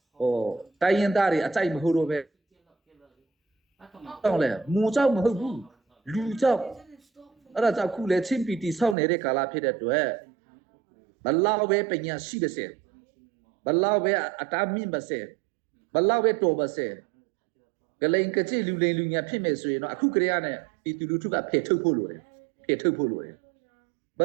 တိုင်းရင်သားတွေအကြိုက်မဟုတ်တော့ပဲတော့လေမူကြောက်မဟုတ်ဘူးလူကြောက်အဲ့ဒါကြောင့်ခုလေချင်းပီတီဆောက်နေတဲ့ကာလဖြစ်တဲ့အတွက်ဘလောက်ပဲပညာရှိပါစေဘလောက်ပဲအတားမြင့်ပါစေဘလောက်ပဲတော်ပါစေကလိန်ကကြစ်လူလိန်လူညာဖြစ်မယ်ဆိုရင်တော့အခုကလေးကနဲ့ပြည်သူလူထုကဖယ်ထုတ်ဖို့လိုတယ်ဘ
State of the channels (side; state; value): left; drops out; at 9.0 s